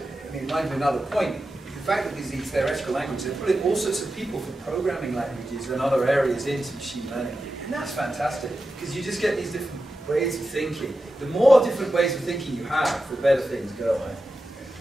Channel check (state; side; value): normal; both; correlation 0.91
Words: I mean, reminds me of another point. The fact that these theoretical languages, they put in all sorts of people for programming languages and other areas into machine learning. And that's fantastic, because you just get these different ways of thinking. The more different ways of thinking you have, the better things go. Right?